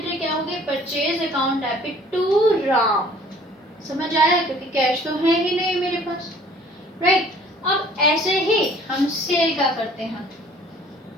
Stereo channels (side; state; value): both; normal; correlation 0.53